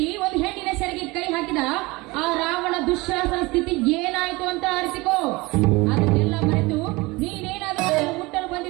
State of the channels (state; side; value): quieter; left; 23.1 dB